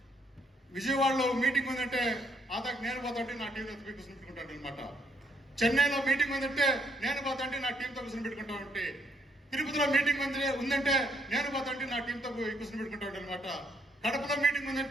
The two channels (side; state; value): both; normal; correlation 0.71